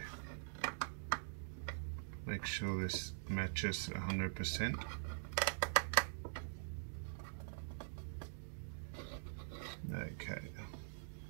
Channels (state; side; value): silent; left; digital silence